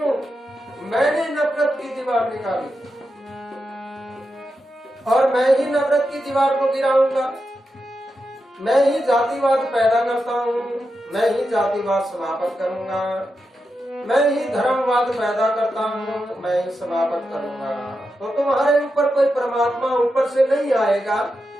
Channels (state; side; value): normal; both; correlation 0.88